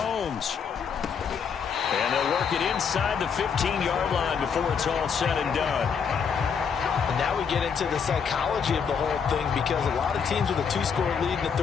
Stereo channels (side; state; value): right; quieter; 6.6 dB